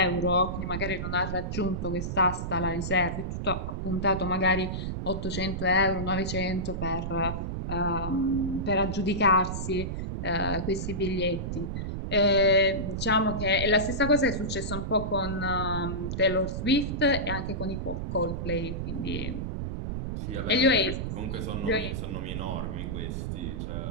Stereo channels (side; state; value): right; noise; rumble, 4 dB below the sound